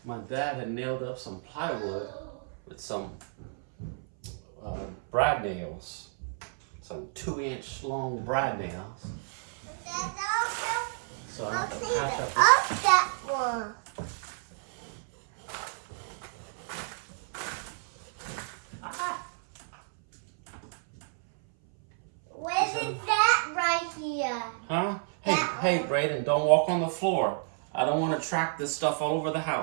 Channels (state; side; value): silent; left; 57 dB below the other